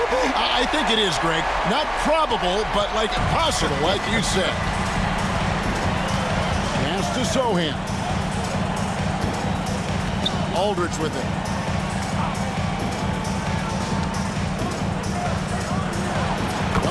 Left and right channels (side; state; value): both; identical; correlation 1.00